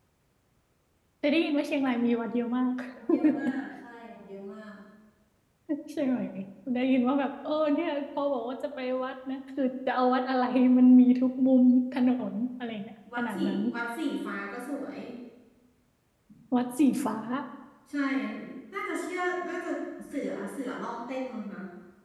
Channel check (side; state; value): both; identical; correlation 1.00